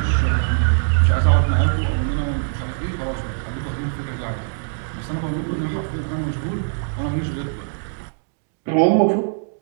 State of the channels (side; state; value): left; silent; digital silence